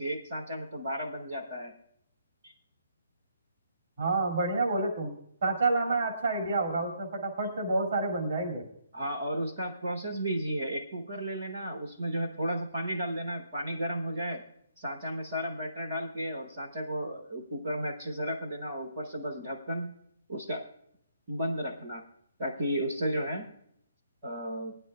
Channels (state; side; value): inverted; both; correlation -0.72